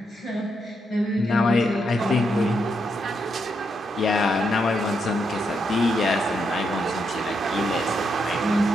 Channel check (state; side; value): normal; both; correlation 0.80